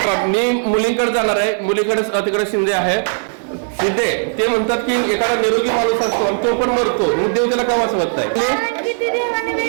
मी मुलींकडे जाणार आहे मुलीकडे तिकडे शिंदे आहे शिंदे ते म्हणतात की एखादा निरोगी माणूस असतो आणि तो पण मरतो मग देव त्याला का वाचवत नाही. कारण की ती देवाने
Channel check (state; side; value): silent; left; digital silence